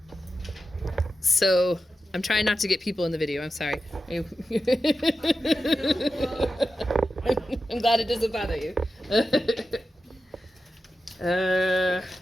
So I'm trying not to get people in the video. I'm sorry. I'm glad it doesn't bother you.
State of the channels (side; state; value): both; normal; correlation 0.91